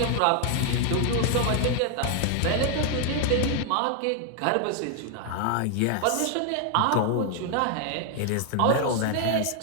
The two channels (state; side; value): different; both; correlation 0.00